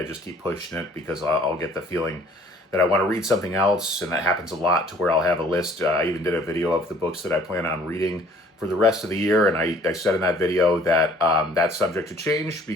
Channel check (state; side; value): normal; both; correlation 0.56